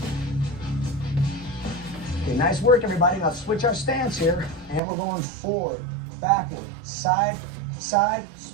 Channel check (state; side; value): drops out; left; at 4.8 s